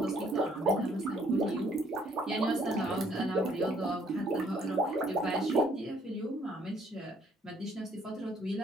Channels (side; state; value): both; normal; correlation 0.64